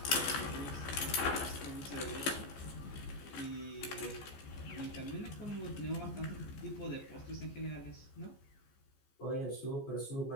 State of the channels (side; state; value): right; late; 14 ms